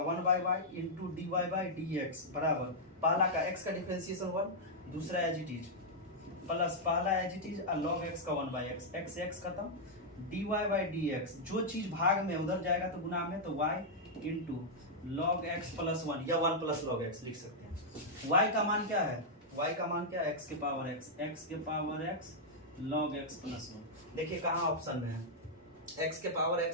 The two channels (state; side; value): normal; both; correlation -0.06